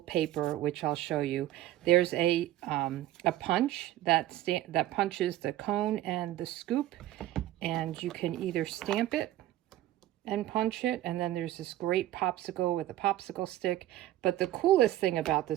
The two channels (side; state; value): left; quieter; 14.3 dB